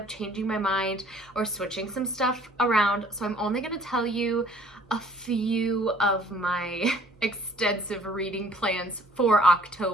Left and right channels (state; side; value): normal; both; correlation 0.56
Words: changing my mind or switching some stuff around, so I'm only going to tell you a few of my extensive reading plans for